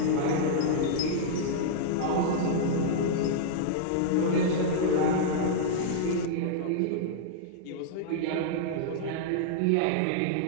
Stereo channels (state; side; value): different; both; correlation -0.02